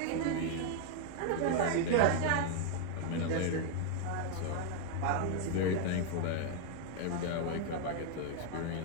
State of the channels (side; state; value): both; different; correlation 0.00